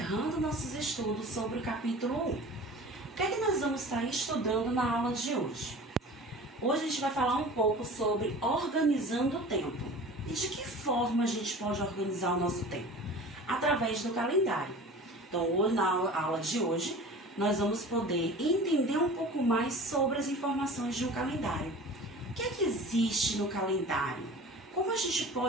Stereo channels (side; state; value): both; normal; correlation 0.40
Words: nossos estudos sobre o capítulo 1. O que é que nós vamos estar estudando na aula de hoje? Hoje a gente vai falar um pouco sobre organizando o tempo. E de que forma a gente pode organizar o nosso tempo? Através do calendário. Então, hoje, na aula de hoje, nós vamos poder entender um pouco mais sobre as informações de um calendário. O que é que existe no calendário? Como a gente